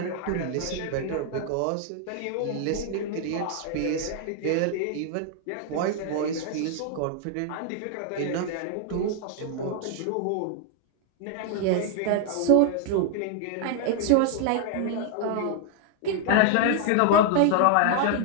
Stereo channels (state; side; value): different; both; correlation 0.00